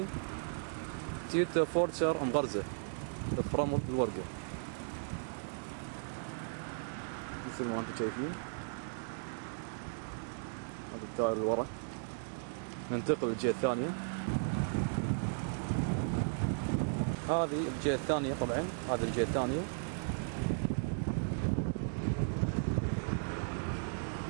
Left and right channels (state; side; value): silent; left; digital silence